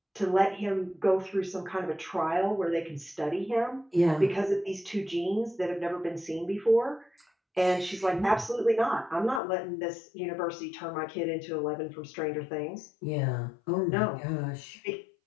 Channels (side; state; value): right; drops out; at 9.4 s